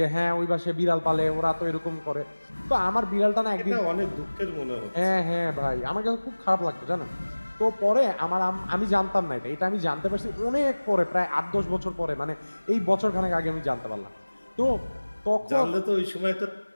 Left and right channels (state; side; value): inverted; both; correlation -1.00